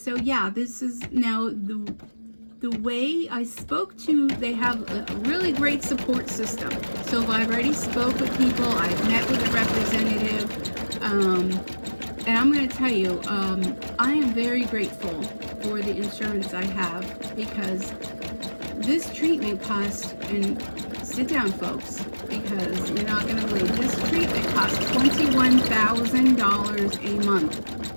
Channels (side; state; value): both; inverted; correlation -1.00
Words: yeah, this is now the way I spoke to, they have a really great support system. So I've already spoke with people, I've met with a representative, and I'm going to tell you, I am very grateful for the insurance I have, because This treatment cost, and sit down folks, because you're not going to believe, this treatment costs $21,000 a month.